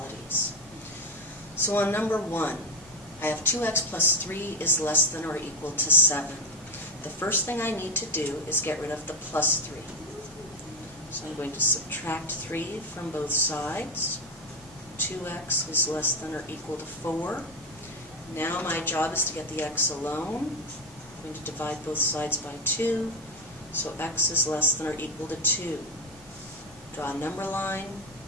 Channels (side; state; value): both; normal; correlation 0.12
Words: So on number 1, I have 2x plus 3 is less than or equal to 7. The first thing I need to do is get rid of the plus 3. So I'm going to subtract 3 from both sides. 2x is less than or equal to 4. Now my job is to get the x alone. I'm going to divide both sides by 2. So x is less than or equal to 2. Draw a number line.